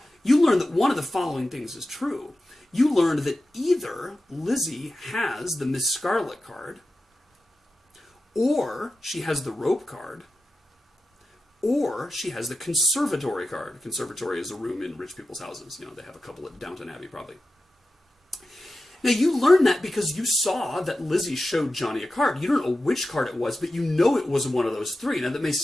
You learned that one of the following things is true. You learned that either Lizzie has the Miss Scarlet card, or she has the rope card, or she has the conservatory card. Conservatory is a room in rich people's houses. They have a couple at Downton Abbey, probably. Now, you learned that because you saw that Lizzie showed Johnny a card. You don't know which card it was, but you know it was one of those 3. Now, that may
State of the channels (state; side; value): normal; both; correlation 0.92